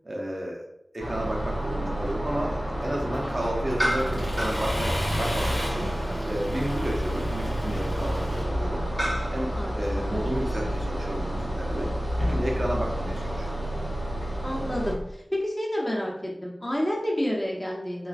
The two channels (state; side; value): normal; both; correlation 0.96